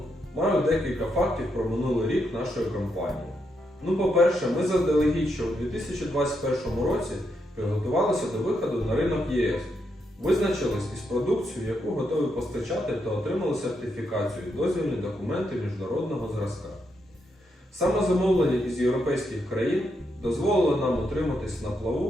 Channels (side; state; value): both; normal; correlation 0.81